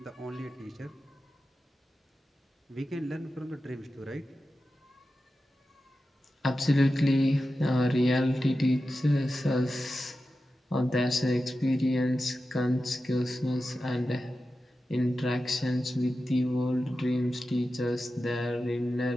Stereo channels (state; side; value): normal; both; correlation 0.92